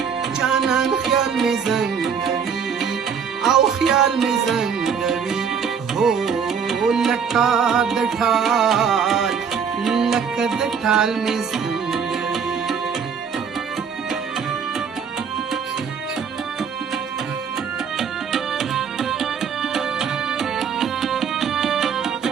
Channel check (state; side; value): quieter; left; 6.8 dB